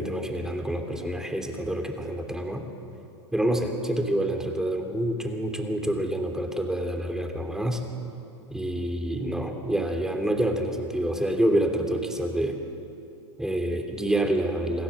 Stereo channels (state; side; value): normal; both; correlation 0.73